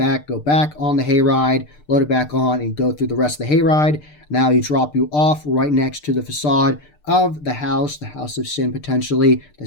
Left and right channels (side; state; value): right; late; 6.7 ms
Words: go back on the hayride, load it back on, and go through the rest of the hayride. Now you drop you off right next to the facade of the House of Sin, potentially the